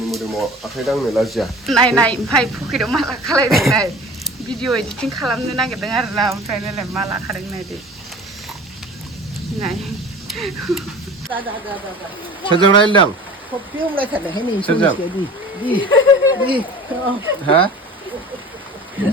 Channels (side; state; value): both; normal; correlation 0.40